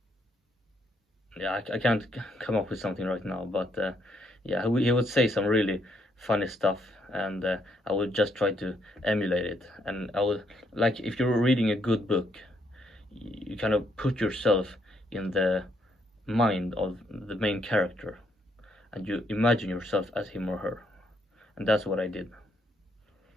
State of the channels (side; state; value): both; normal; correlation 0.73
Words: yeah, I can't come up with something right now, but yeah, he would say some really funny stuff, and I would just try to emulate it. And I would, like, if you're reading a good book, you kind of put yourself in the mind of the main character, and you imagine yourself as him or her, and that's what I did.